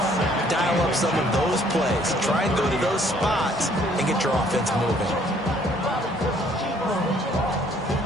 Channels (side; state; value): both; normal; correlation 0.62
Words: Dial up some of those plays. Try and go to those spots and get your offense moving.